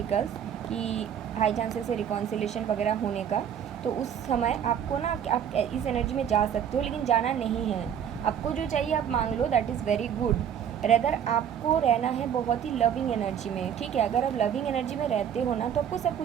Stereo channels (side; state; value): left; quieter; 8.8 dB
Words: कि हाई चांसेस है रिकॉन्सिलेशन वगैरह होने का। तो उस समय आपको ना, आप इस एनर्जी में जा सकते हो, लेकिन जाना नहीं है। आपको जो चाहिए आप मांग लो, that is very good. Rather आपको रहना है बहुत ही लविंग एनर्जी में। ठीक है, अगर आप लविंग एनर्जी में रहते हो ना तो आपको सब